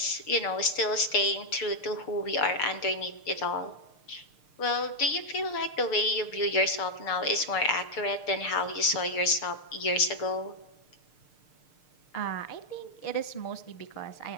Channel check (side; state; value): right; late; 6.6 ms